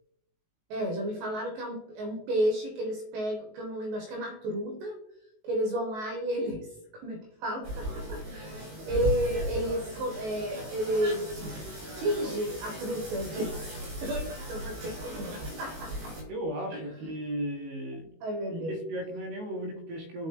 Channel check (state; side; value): late; left; 19 ms